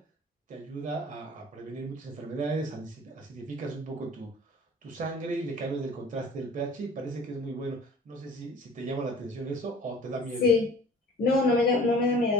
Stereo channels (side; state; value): both; normal; correlation 0.47